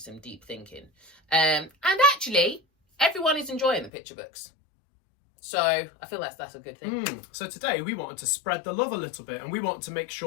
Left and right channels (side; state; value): right; drops out; at 3.9 s